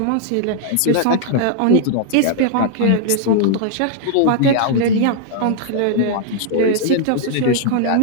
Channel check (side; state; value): both; different; correlation -0.01